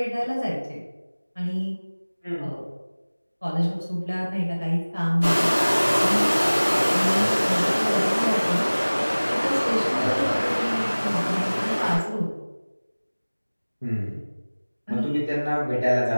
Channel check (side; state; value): both; inverted; correlation -1.00